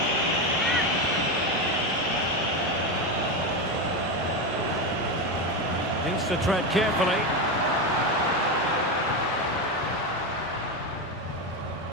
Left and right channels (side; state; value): both; normal; correlation 0.14